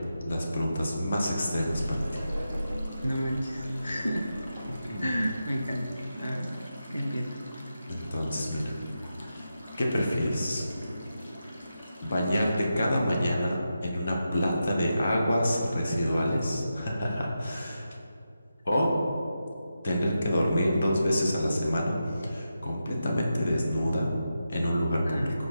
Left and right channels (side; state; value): both; inverted; correlation -0.88